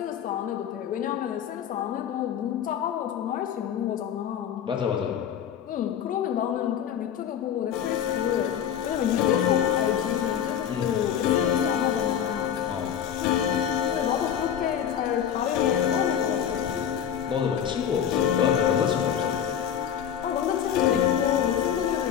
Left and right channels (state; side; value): quieter; right; 9.1 dB